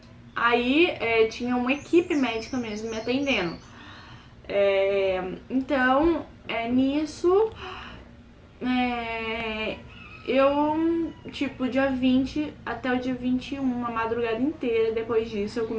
Aí tinha uma equipe médica mesmo me atendendo. Então, nisso, eu, tipo, dia 20 até o dia 21, uma madrugada inteira, depois disso eu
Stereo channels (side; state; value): both; identical; correlation 1.00